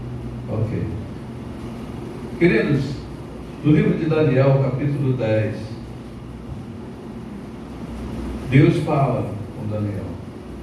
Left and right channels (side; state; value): both; identical; correlation 1.00